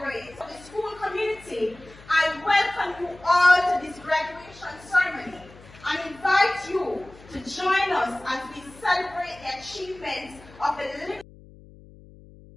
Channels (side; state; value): left; noise; hum, 22 dB below the sound